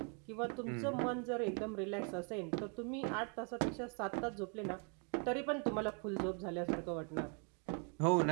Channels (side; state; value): left; quieter; 37.9 dB